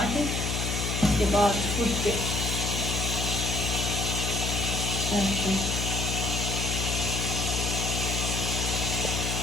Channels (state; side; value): noise; left; hum, 1 dB below the sound